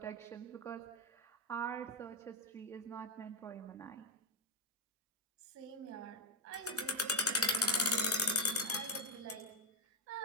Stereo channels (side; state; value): both; normal; correlation 0.04